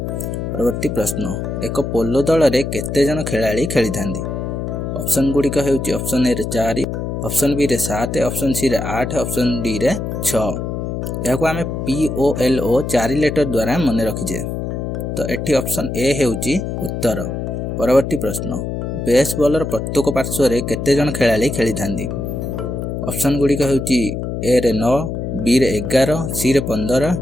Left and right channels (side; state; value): left; noise; hum, 4 dB below the sound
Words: परवर्ती प्रश्न, एक पोलो दल रे केते जण खेलाड़ी खेली थांदी। ऑप्शन गुडी का हेउची ऑप्शन ए रे 4, ऑप्शन बी रे 7, ऑप्शन सी रे 8, ऑप्शन डी रे 6। एहा को आमे POLO 4 लेटर द्वारा माने रखिजे। तो एठी ऑप्शन ए हेउची उत्तर। परवर्ती प्रश्न, बेसबॉलर प्रत्येक पार्श्व रे केते जण खेलाड़ी खेली थांदी। ऑप्शन गुडी का हेउची ए रे 9, बी रे 11, सी रे 15,